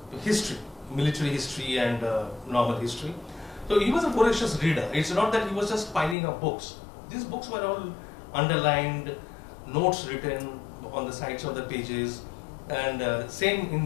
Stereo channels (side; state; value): right; drops out; at 6.2 s